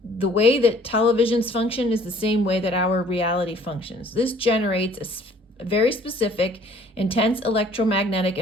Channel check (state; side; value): normal; both; correlation 0.56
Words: the way that televisions function is the same way that our reality functions. This generates a very specific, intense electromagnetic